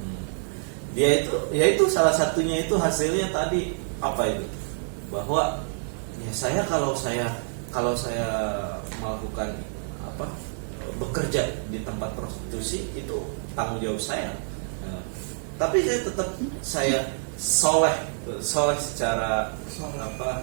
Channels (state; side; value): silent; left; 60 dB below the other